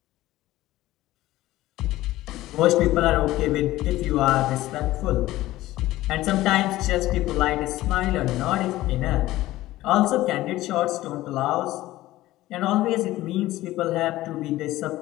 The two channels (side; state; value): right; quieter; 16.4 dB